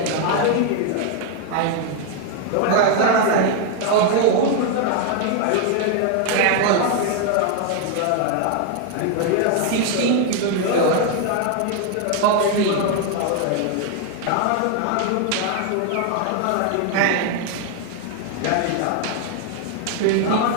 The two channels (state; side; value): different; both; correlation 0.00